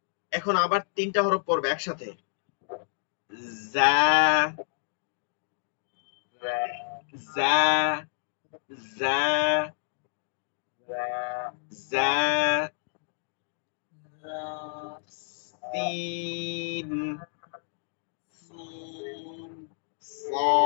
এখন আবার 3টা হরফ পড়বে একসাথে, যা, যা, যা, যা, সিন,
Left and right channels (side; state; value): right; silent; digital silence